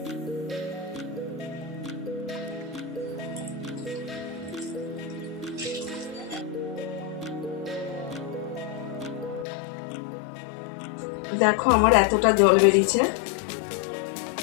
দেখো আমার এতটা জল বেরিয়েছে।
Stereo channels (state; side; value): drops out; right; at 9.5 s